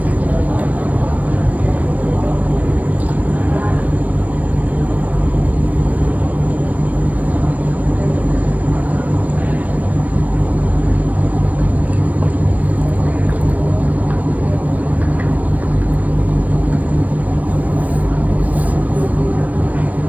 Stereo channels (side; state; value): left; late; 0.073 ms